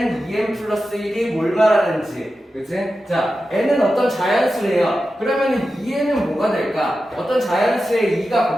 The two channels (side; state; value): both; normal; correlation 0.92